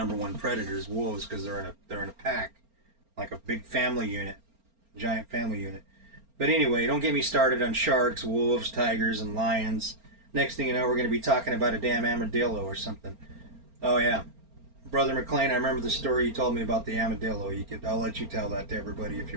one predators, wolves, because they're in a pack, like a big family unit, giant family unit. But anyway, don't get me started on sharks, wolves, tigers, and lions. Next thing you know, we're going to be talking about a damn armadillo or something. Oh yeah, Brother McLean, I remember the story you told me about the armadillo. I'll let you tell that to everybody if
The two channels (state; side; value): late; left; 4.4 ms